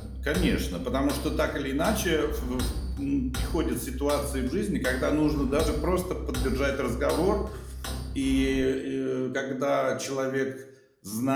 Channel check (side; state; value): both; identical; correlation 1.00